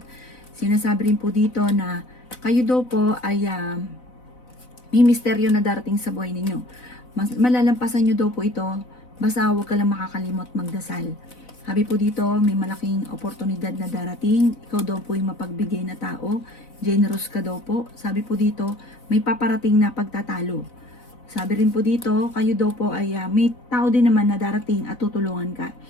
Sinasabi rin po dito na kayo daw po ay may misteryo na darating sa buhay ninyo. Malalampasan nyo daw po ito, basta huwag ka lang makakalimot magdasal. Sabi po dito, may malaking oportunidad na darating, ikaw daw po yung mapagbigay na tao, generous ka daw po. Sabi po dito, may paparating na pagtatalo. Sabi rin po dito, kayo daw po ay may tao din naman na darating at tutulungan ka.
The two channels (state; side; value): late; right; 4.0 ms